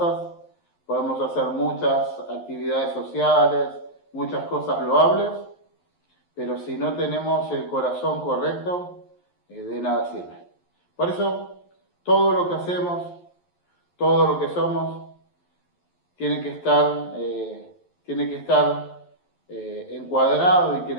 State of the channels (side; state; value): right; late; 11 ms